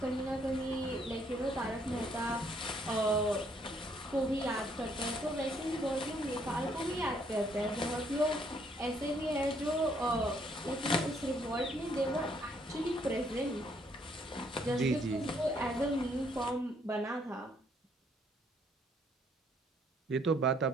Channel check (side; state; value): both; normal; correlation 0.68